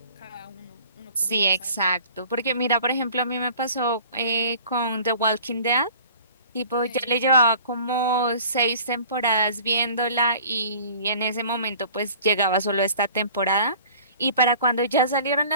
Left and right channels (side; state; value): both; inverted; correlation -0.48